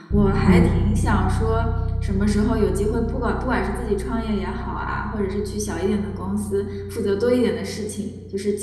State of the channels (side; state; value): both; identical; correlation 1.00